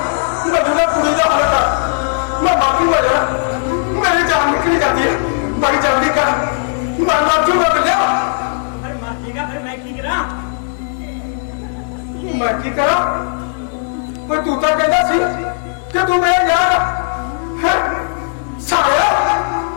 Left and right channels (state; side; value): silent; right; digital silence